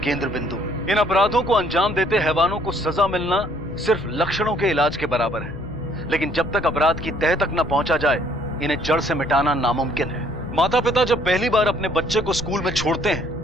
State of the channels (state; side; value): noise; left; hum, 13 dB below the sound